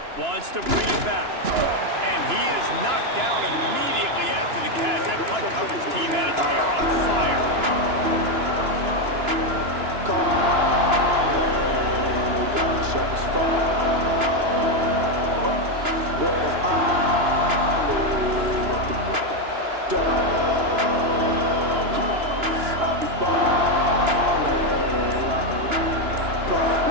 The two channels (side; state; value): left; late; 2.9 ms